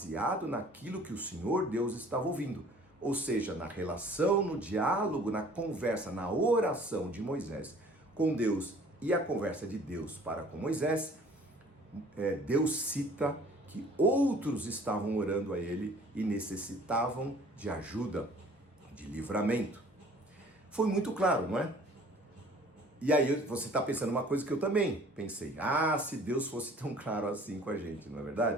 naquilo que o Senhor Deus estava ouvindo. Ou seja, na relação, no diálogo, na conversa, na oração de Moisés com Deus e a conversa de Deus para com Moisés, Deus cita que outros estavam orando a ele e necessitavam de ajuda, de livramento. Foi muito claro, não é? E aí você está pensando uma coisa que eu também pensei. Se Deus fosse tão claro assim com a gente, não é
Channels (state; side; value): normal; both; correlation 0.52